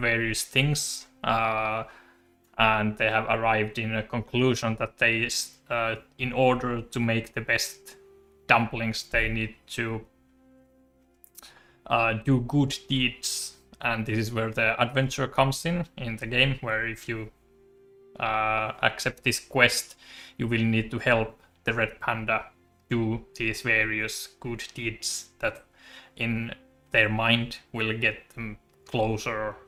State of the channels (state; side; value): identical; both; correlation 1.00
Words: things, and they have arrived in a conclusion that they, in order to make the best dumplings, they need to do good deeds, and this is where the adventure comes in the game, where if you accept this quest, you will need to help the red panda do these various good deeds that in their mind will get them closer